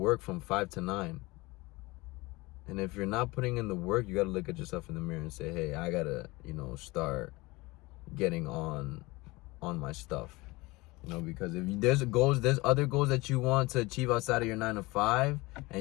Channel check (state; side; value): quieter; right; 22.5 dB